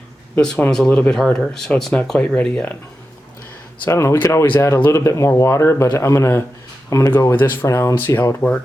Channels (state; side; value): normal; both; correlation 0.90